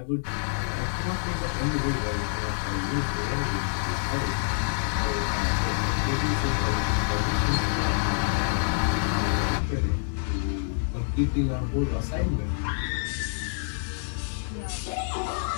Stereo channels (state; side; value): silent; right; 60 dB below the other